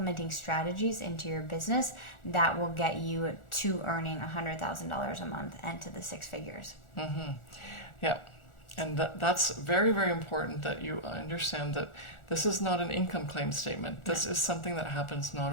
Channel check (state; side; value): late; right; 1.4 ms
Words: strategies into your business that will get you to earning $100,000 a month and to the 6 figures. Mm-hmm. Yeah. And that's very, very important that you understand that this is not an income claim statement. This is something that happens